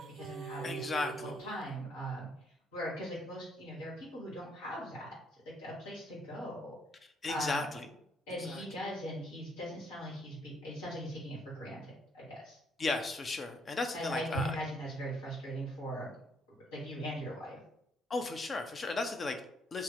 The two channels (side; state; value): both; normal; correlation 0.70